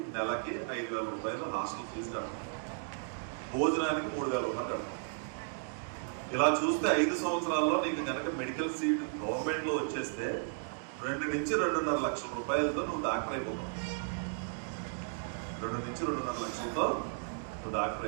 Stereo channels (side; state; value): left; silent; digital silence